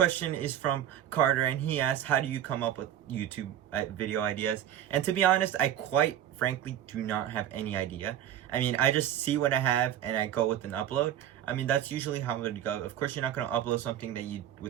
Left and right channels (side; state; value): left; quieter; 11.1 dB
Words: is from Carter, and he asks, how do you come up with YouTube video ideas? And to be honest, I quite frankly do not have any idea. I mean, I just see what I have and I go with an upload. I mean, that's usually how it would go. Of course, you're not going to upload something